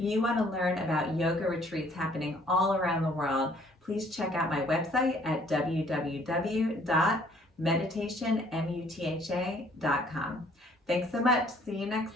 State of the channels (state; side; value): normal; both; correlation 0.60